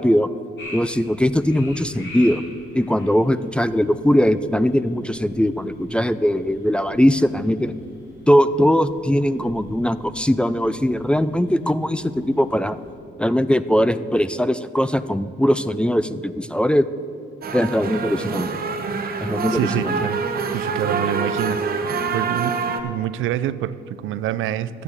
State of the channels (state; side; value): normal; both; correlation 0.84